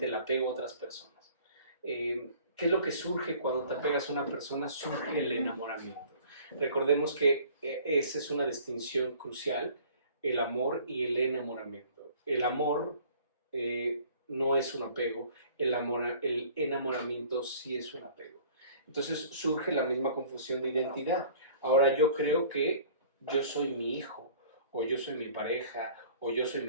el apego a otras personas. ¿Qué es lo que surge cuando te apegas a una persona? Surge el enamoramiento. Recordemos que esa es una distinción crucial, el amor y el enamoramiento. El amor no es un apego, el enamoramiento sí es un apego. Entonces surge la misma confusión de identidad. Ahora yo creo que yo soy mi hijo, o yo soy mi pareja, o yo soy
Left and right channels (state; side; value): inverted; both; correlation -0.51